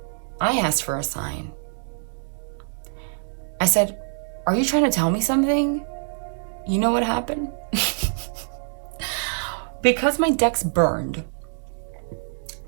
I asked for a sign. I said, are you trying to tell me something? You know what happened? because my decks burned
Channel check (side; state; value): left; silent; digital silence